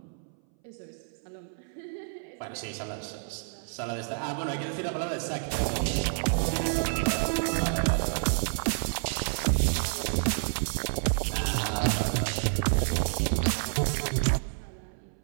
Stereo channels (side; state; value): left; silent; 58 dB below the other